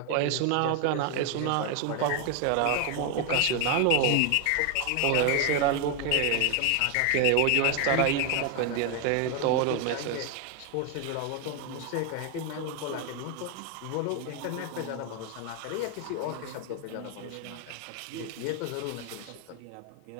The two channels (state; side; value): different; both; correlation 0.01